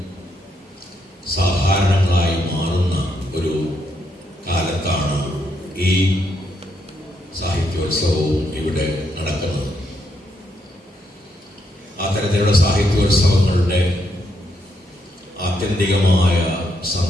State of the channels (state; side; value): normal; both; correlation 0.77